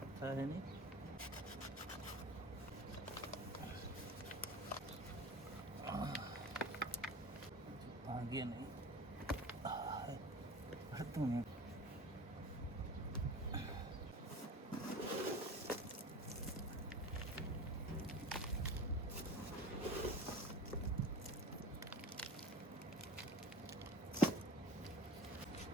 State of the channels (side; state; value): both; normal; correlation 0.37